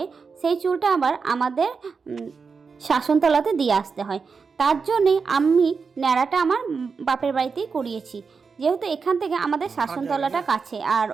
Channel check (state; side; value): quieter; left; 5.2 dB